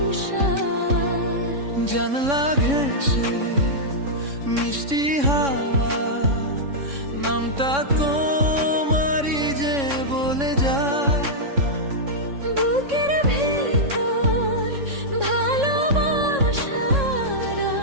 জানলা ঘেঁষে মিষ্টি হাওয়া, নামটা তোমারই যে বলে যায়। বুকের ভেতর ভালোবাসারা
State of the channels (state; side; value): late; left; 3.6 ms